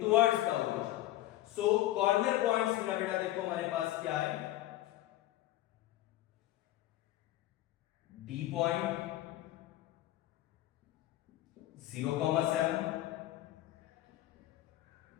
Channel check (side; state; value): right; quieter; 15.2 dB